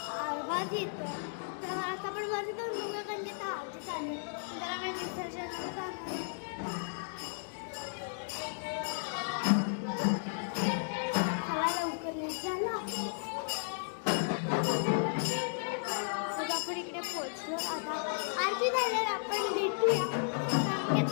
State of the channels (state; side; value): silent; right; digital silence